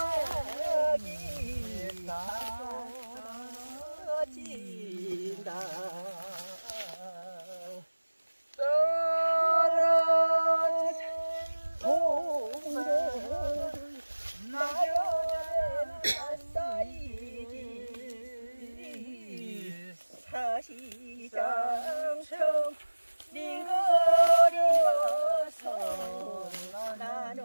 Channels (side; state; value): both; inverted; correlation -1.00